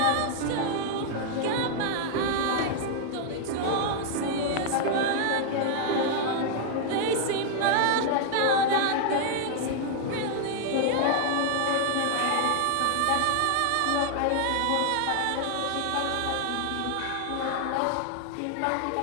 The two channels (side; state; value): both; different; correlation 0.00